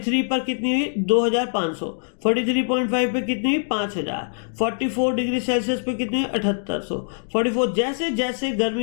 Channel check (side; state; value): right; silent; digital silence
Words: पर कितनी हुई? 2500। 43.5 पे कितनी हुई? 5000। 44 डिग्री सेल्सियस पे कितनी हुई? 7800। 44 जैसे जैसे